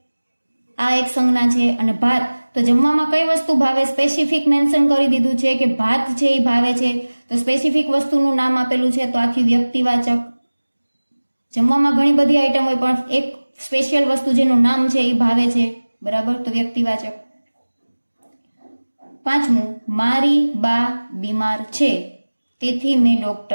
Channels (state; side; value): inverted; both; correlation -1.00